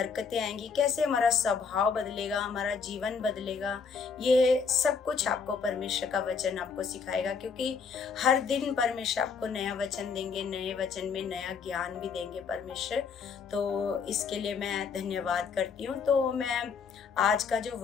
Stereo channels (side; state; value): right; quieter; 5.7 dB